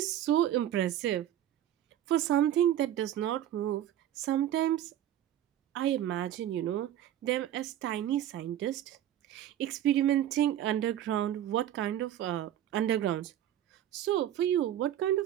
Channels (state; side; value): quieter; left; 11.6 dB